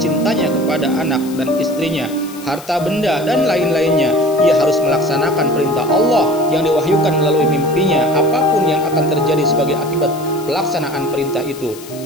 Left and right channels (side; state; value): left; noise; hiss, 18 dB below the sound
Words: cintanya kepada anak dan istrinya, harta benda dan lain-lainnya. Ia harus melaksanakan perintah Allah yang diwahyukan melalui mimpinya, apapun yang akan terjadi sebagai akibat pelaksanaan perintah itu.